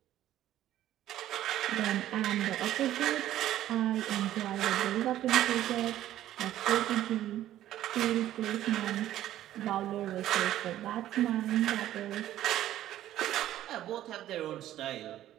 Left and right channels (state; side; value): quieter; left; 13.0 dB